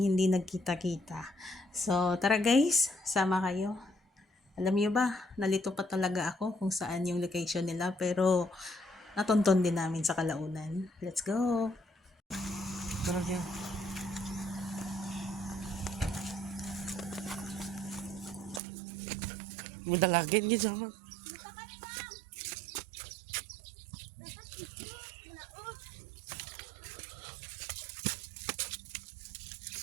hindi nagkita-kita. So, tara guys, sama kayo. Alam niyo ba, nalito pa talaga ako kung saan yung location nila pero natonton din namin sa kalaunan. Let's go! Tara kaya. May dalagin gid sama.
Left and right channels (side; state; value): left; drops out; at 18.6 s